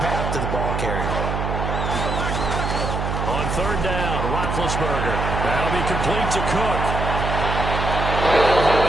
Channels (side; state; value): right; noise; hum, 2 dB below the sound